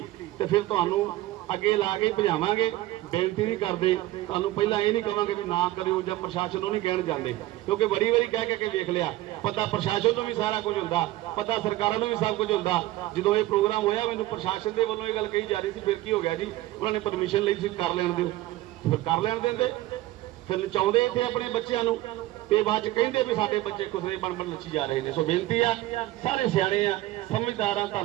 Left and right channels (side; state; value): left; quieter; 16.7 dB